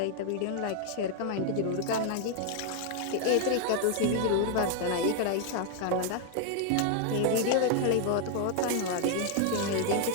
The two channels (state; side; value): different; both; correlation 0.00